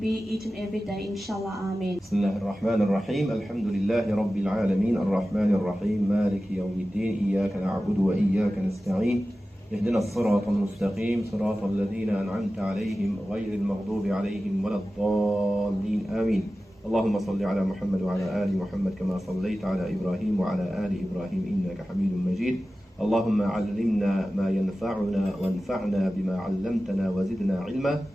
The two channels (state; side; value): normal; both; correlation 0.95